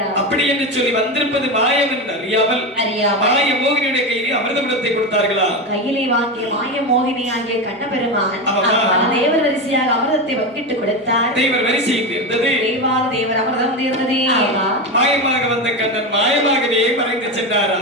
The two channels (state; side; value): normal; both; correlation 0.17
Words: அப்படி என்று சொல்லி வந்திருப்பது மாயம் என்று அறியாமல் மாய மோகினியுடைய கையிலே அமிர்தமிடத்தை கொடுத்தார்களா? கையிலே வாங்கிய மாய மோகினி ஆகிய கண்ணபெருமான் தேவர் வரிசையாக அமிர்தத்தை வங்கிட்டு கொடுத்தார். தேவர் வரிசை இருந்தது. தேவாத தேவர் அமிர்தம் தீர்ந்தது. மாயமாக வந்த கண்ணன் மாயமாகவே மறைந்து சென்றாரா?